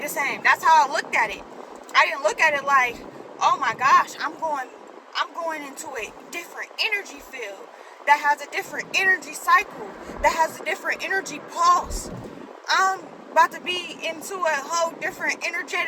same. That's how I looked at it. I didn't look at it like, oh my gosh, I'm going into a different energy field that has a different energy cycle, that has a different energy pulse. I'm about to be into a whole different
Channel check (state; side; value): identical; both; correlation 1.00